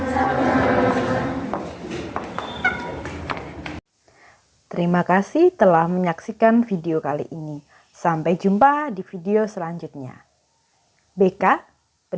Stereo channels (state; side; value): identical; both; correlation 1.00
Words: Terima kasih telah menyaksikan video kali ini. Sampai jumpa di video selanjutnya. BK